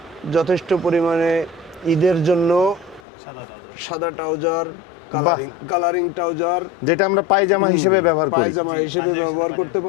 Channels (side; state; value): right; drops out; at 3.0 s